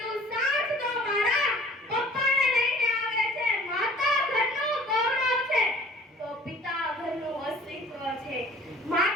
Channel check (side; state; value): both; normal; correlation 0.50